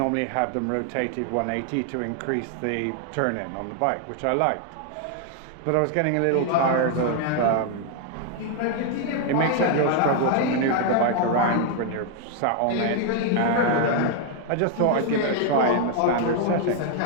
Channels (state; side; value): different; both; correlation 0.00